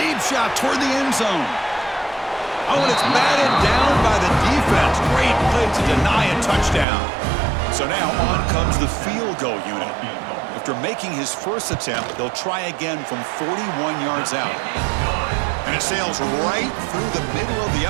shot toward the end zone. Oh, and it's batted down by the defense. Great play to deny a touchdown. So now on comes the field goal unit. After making his first attempt, they'll try again from 41 yards out. And it sails right through the middle of the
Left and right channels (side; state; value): left; drops out; at 6.9 s